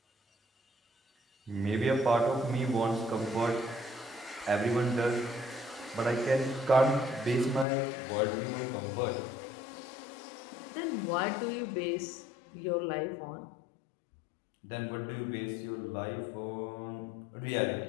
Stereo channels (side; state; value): right; drops out; at 7.7 s